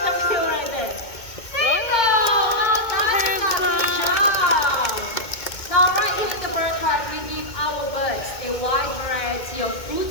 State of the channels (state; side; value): late; right; 2.2 ms